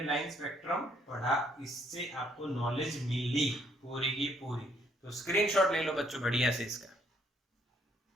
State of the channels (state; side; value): normal; both; correlation 0.68